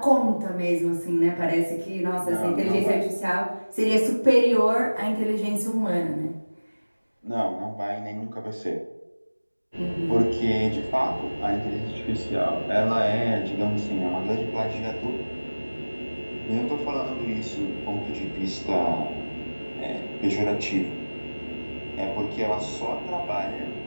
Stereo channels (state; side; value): inverted; both; correlation -1.00